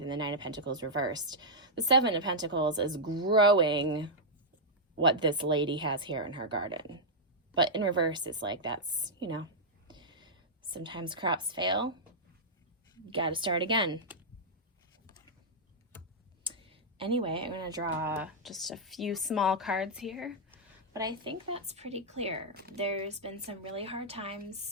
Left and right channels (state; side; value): normal; both; correlation -0.07